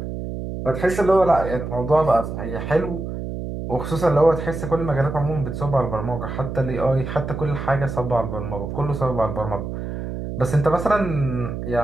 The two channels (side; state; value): right; noise; hum, 6 dB below the sound